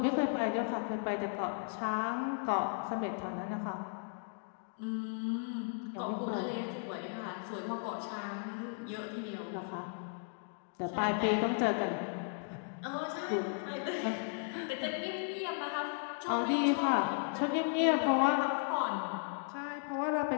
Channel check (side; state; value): right; silent; 54 dB below the other